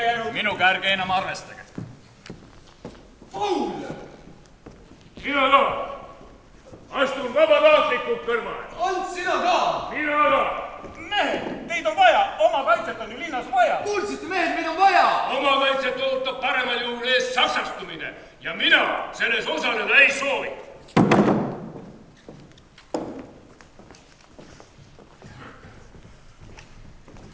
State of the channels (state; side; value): identical; both; correlation 1.00